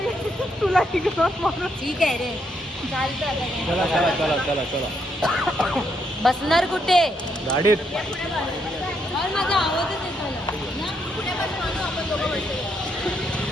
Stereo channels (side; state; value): both; normal; correlation 0.76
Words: तुला ठीक आहे रे. चालतं आता. चला बसणार कुठे? गाडीत. माझा आवाजच